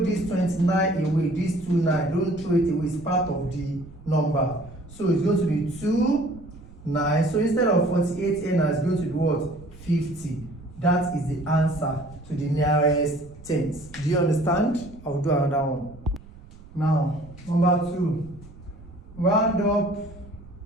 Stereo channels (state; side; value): noise; right; rumble, 20 dB below the sound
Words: 29 away, this 29, don't throw it away, it's part of the number. So it's going to be 2, 9. So instead of 48 here now, it's going to be what? 50. That is the answer to the nearest tens. Do you understand? I'll do another one. Now, number 2. Round